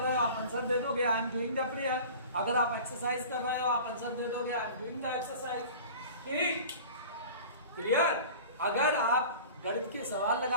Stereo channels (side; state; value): both; inverted; correlation -0.40